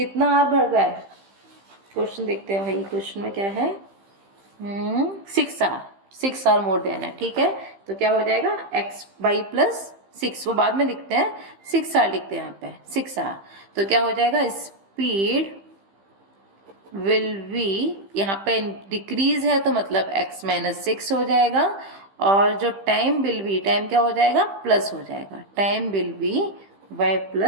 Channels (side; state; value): left; late; 15 ms